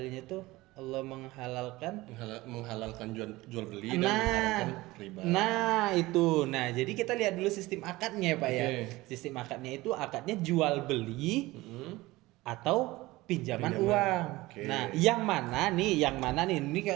itu Allah menghalalkan menghalalkan jual beli dan mengharamkan riba. Nah itu, nah jadi kita lihat dulu sistem akadnya ya Pak ya. Oke. Sistem akadnya itu akadnya jual beli atau pinjaman uang. Oke. Nah yang mana nih? Ini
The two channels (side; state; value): left; quieter; 19.6 dB